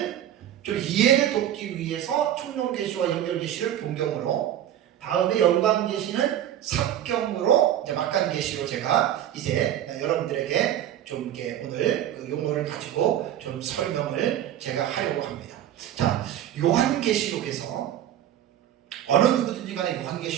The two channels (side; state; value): left; quieter; 11.4 dB